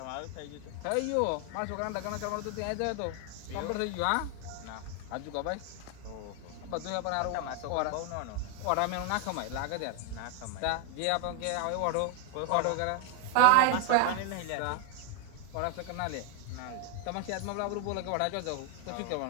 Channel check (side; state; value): both; different; correlation 0.00